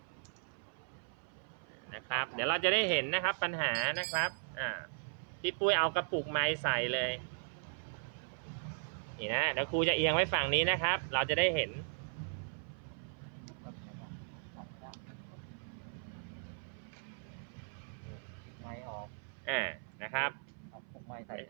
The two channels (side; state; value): left; silent; 53 dB below the other